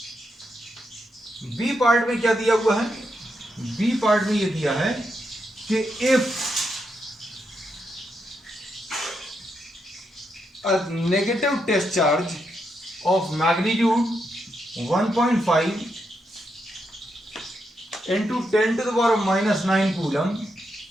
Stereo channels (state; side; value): normal; both; correlation 0.82